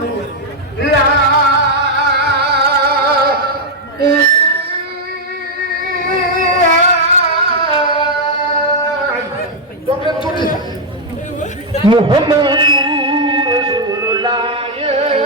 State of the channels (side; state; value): both; normal; correlation -0.01